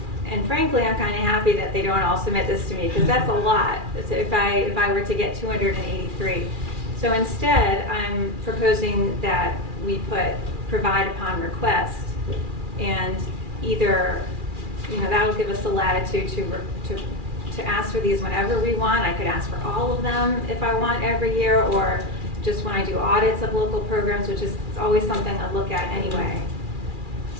And frankly, I'm kind of happy that they don't all submit this to me, because that's a lot if I were to get 283. So instead, I'm proposing that we provide upon request, and either, that'll give us the latitude to ask for these whenever we want. I could ask for all of them if I want every year, or just when I do audits of local programs, which is always something I look at anyway.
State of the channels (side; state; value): left; late; 2.4 ms